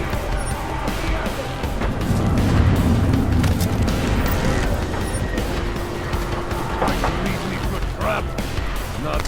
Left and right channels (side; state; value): both; identical; correlation 1.00